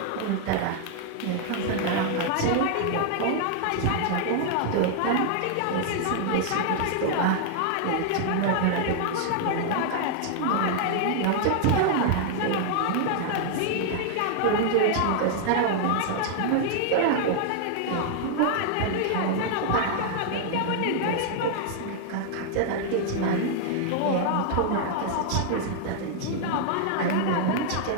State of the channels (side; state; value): both; different; correlation 0.00